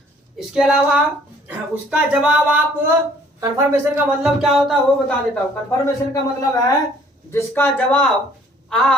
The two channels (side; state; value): both; normal; correlation 0.58